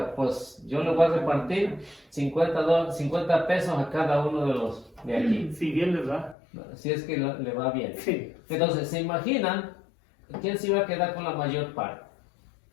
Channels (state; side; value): drops out; right; at 6.4 s